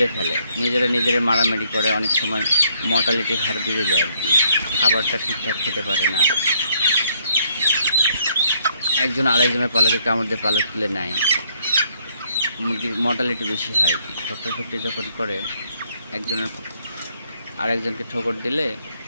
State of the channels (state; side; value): inverted; both; correlation -0.68